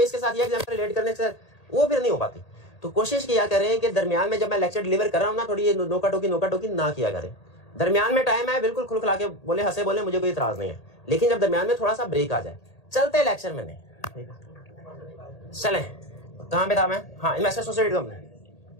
इसके साथ ये एग्जाम्पल रिलेट करने से, वो फिर नहीं हो पाती। तो कोशिश किया करें कि दरमियान में जब मैं लेक्चर डिलीवर कर रहा हूँ ना, थोड़ी ये नोका टोकी ना किया करें। दरमियान में टाइम है, बिल्कुल खुलखुला के बोले, हंसे बोले, मुझे कोई इतराज नहीं है, लेकिन जब दरमियान में थोड़ा सा ब्रेक आ जाए, चलते लेक्चर में नहीं। चलें, कहाँ पे था मैं? हाँ, investor associated company,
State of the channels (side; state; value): right; late; 1.8 ms